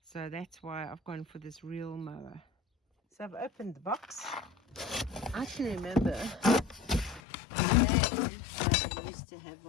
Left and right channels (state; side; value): drops out; right; at 7.2 s